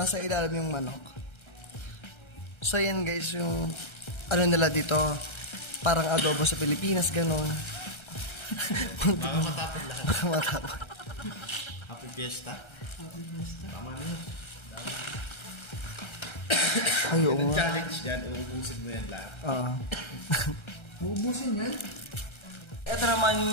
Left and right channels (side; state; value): right; late; 1.3 ms